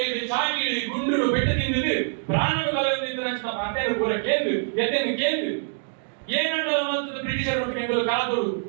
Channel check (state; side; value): silent; left; digital silence